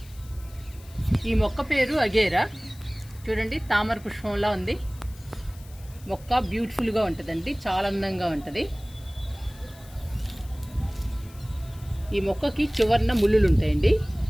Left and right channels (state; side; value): noise; left; hiss, 23 dB below the sound